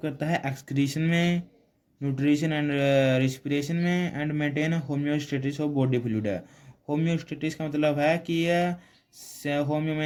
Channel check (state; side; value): identical; both; correlation 1.00